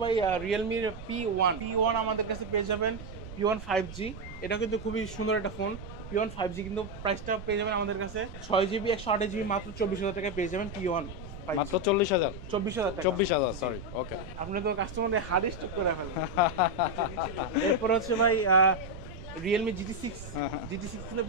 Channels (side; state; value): right; noise; rumble, 12 dB below the sound